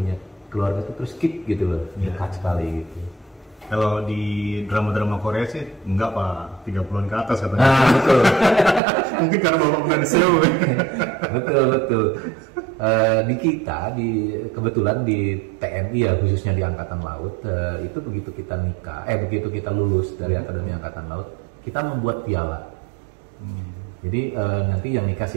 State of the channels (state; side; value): drops out; left; at 8.8 s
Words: keluarga itu terus skip gitu loh, dekat sekali gitu. Kalau di drama-drama Korea sih enggak Pak, 30-an ke atas katanya. Nah, betul. Mungkin karena bapak bukan SEO. Betul. Di kita, kebetulan di TNI ya, khususnya di Angkatan Laut, itu begitu kita lulus dari Akademi Angkatan Laut, kita membuat piala. Jadi nanti yang nikah